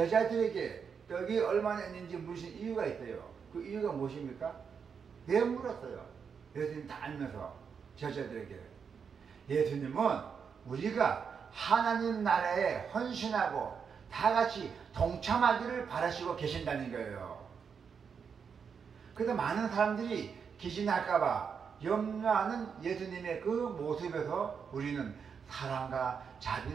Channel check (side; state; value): left; quieter; 6.4 dB